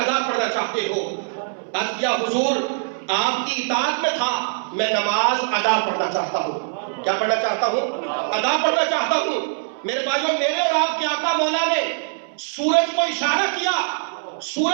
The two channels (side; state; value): left; silent; 64 dB below the other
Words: پڑھنا چاہتے ہو؟ عرض کیا حضور آپ کی اطاعت میں تھا، میں نماز ادا پڑھنا چاہتا ہوں۔ کیا پڑھنا چاہتا ہوں؟ ادا پڑھنا چاہتا ہوں۔ میرے بھائیو میرے اور آپ کے آقا مولا نے سورج کو اشارہ کیا،